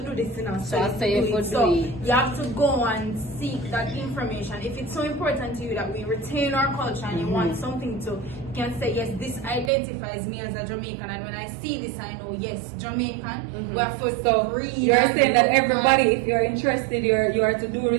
do this, So I say you could So do it. you have to go and seek that information. If it's so important to you that we retain our culture and you want something to, you can say, yes, this identifies me as a Jamaican, and when I see this, I know, yes, Jamaican. We have to read. You're and saying that look everybody, if you're interested, you are to do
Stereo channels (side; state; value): left; drops out; at 9.7 s